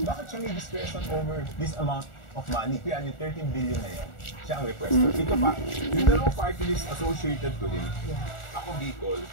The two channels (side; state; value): right; late; 1.4 ms